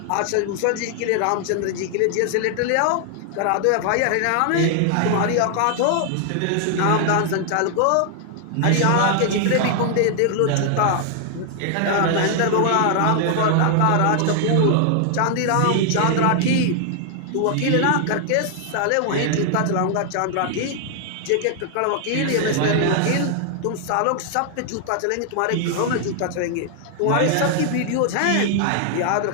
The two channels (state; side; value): different; both; correlation 0.00